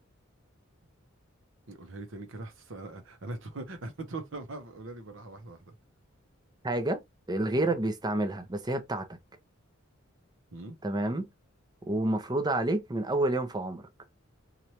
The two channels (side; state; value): both; normal; correlation 0.61